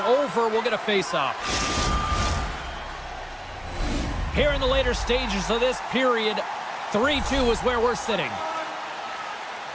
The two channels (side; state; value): both; identical; correlation 1.00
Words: over. We'll get a face-off. Here in the later stages of this period, 3-2 is where we're sitting.